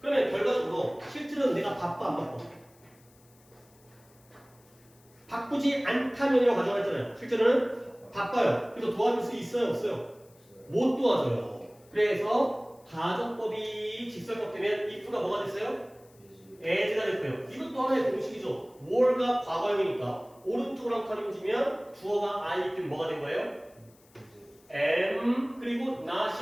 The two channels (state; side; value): noise; left; hiss, 29 dB below the sound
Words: 그러면 결과적으로 실제로는 내가 바빠 안 바빠? 바쁘지 않다면이라고 가정했잖아요. 실제로는 바빠요. 그래서 도와줄 수 있어요? 없어요? 못 도와줘요. 그래서 가정법이 직설법 되면 if가 뭐가 됐어요? as가 됐고요. 이것도 하나의 공식이죠. more가 과거형이니까 오른쪽으로 한 칸 움직이면 주어가 I이기 때문에 뭐가 된 거예요? am 그리고